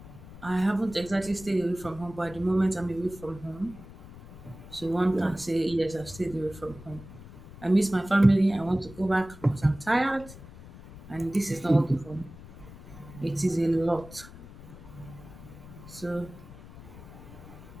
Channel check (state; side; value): noise; left; rumble, 17 dB below the sound